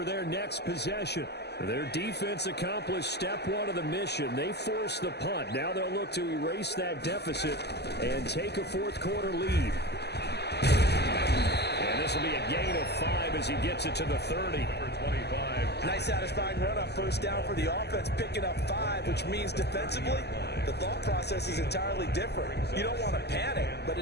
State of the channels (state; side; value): late; right; 0.49 ms